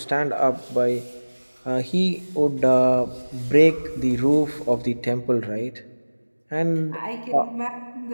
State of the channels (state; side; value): inverted; both; correlation -1.00